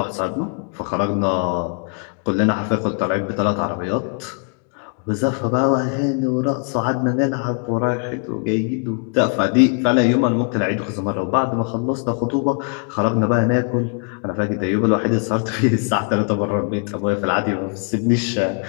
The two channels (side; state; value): right; quieter; 39.3 dB